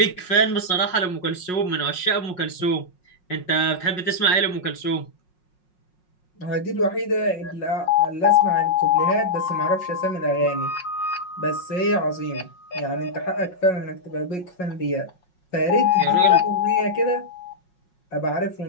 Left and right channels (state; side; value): late; right; 5.5 ms